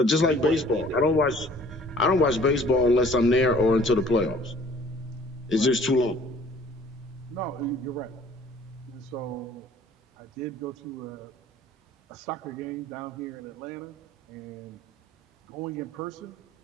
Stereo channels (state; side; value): normal; both; correlation 0.53